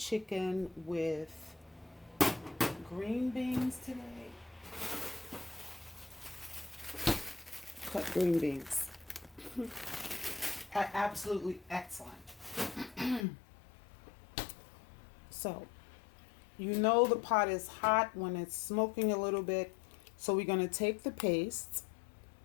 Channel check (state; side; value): drops out; right; at 13.2 s